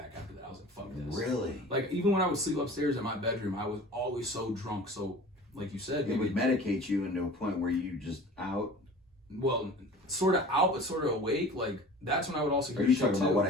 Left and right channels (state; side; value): normal; both; correlation 0.41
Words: after that. I was like, fuck this. Really? Like, even when I would sleep upstairs in my bedroom, I was always so drunk. So, like you said, it would medicate you into a point where you just out. Well, sort of out, but sort of awake. Like, that's when I would also hear. Are you talking about what